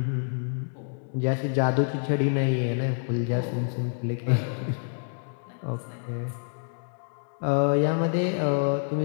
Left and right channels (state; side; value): silent; right; digital silence